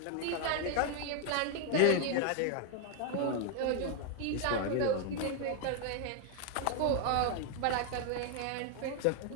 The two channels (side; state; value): both; different; correlation 0.00